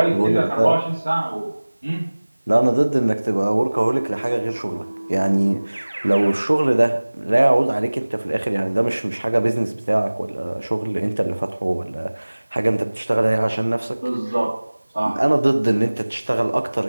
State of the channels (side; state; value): both; inverted; correlation -1.00